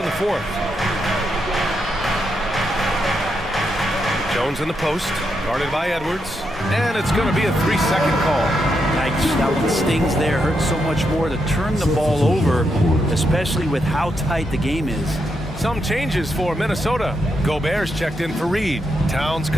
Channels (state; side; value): normal; both; correlation 0.82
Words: the 4th. Jones in the post, guarded by Edwards, and it's going to be a 3-second call. Nice. That one stings there. Hurts so much more to turn the ball over, especially with how tight the game is. Some changes for Minnesota. Gobert's checked in for Reed. Towns